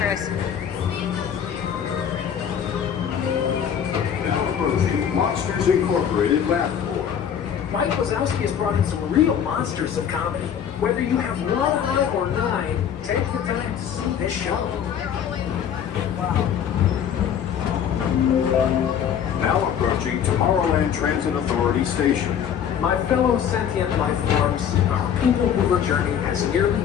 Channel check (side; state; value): right; quieter; 8.6 dB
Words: Now approaching Monsters Incorporated Lab 4. Mike Wazowski has brought in some real monsters of comedy. Whether you have one eye or 9, take the time to see this show. Now approaching Tomorrowland Transit Authority Station. My fellow sentient life forms, our Peoplemover journey has nearly